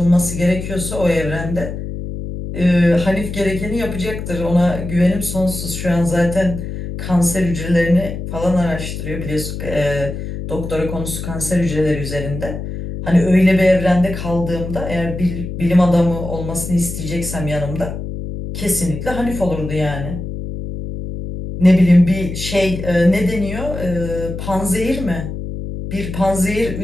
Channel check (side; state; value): left; noise; hum, 7 dB below the sound